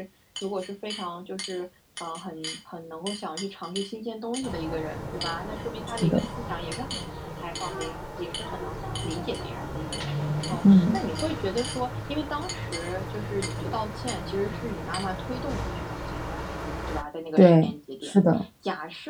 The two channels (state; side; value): identical; both; correlation 1.00